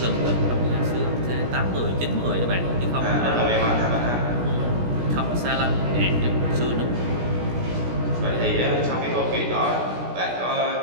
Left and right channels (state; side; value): late; left; 17 ms